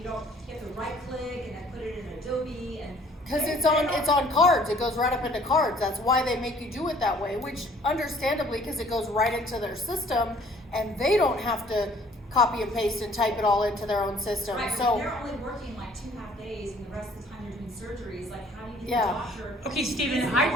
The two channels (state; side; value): normal; both; correlation 0.57